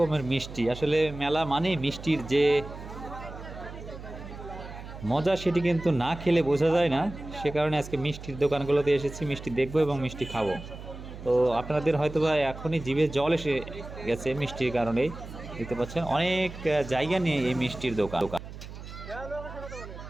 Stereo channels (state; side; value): noise; right; hum, 12 dB below the sound